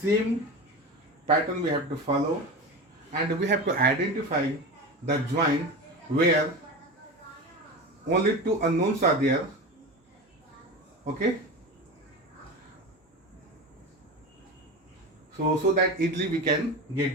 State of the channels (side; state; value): both; normal; correlation 0.26